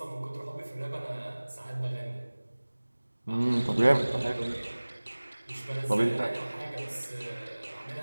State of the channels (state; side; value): inverted; both; correlation -1.00